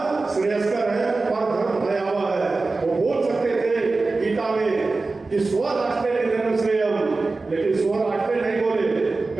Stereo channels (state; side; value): quieter; left; 3.6 dB